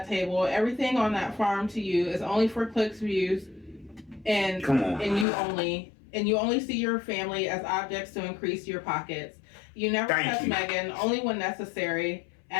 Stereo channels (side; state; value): right; drops out; at 5.2 s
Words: table. Everything on that farm to you is only for clicks, views, and you only see your family as objects to increase your pockets. You never touch Megan, only when necessary,